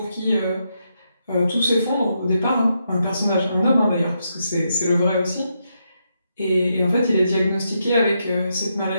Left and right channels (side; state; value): both; inverted; correlation -0.82